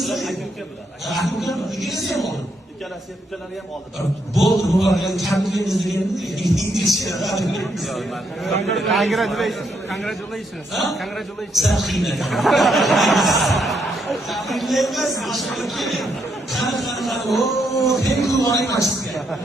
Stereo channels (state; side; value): normal; both; correlation 0.76